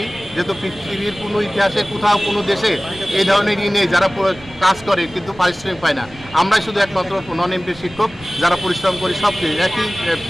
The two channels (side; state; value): right; noise; rumble, 20 dB below the sound